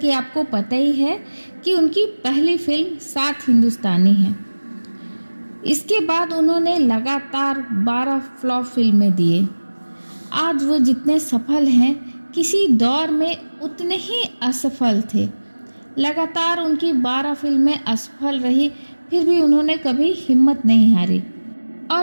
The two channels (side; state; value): both; inverted; correlation -1.00